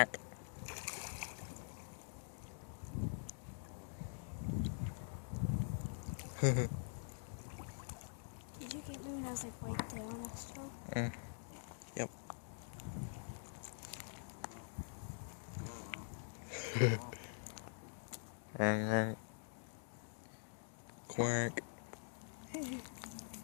Did you get me when I was like right there on that straw? Yep. Quack.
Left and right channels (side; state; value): right; silent; digital silence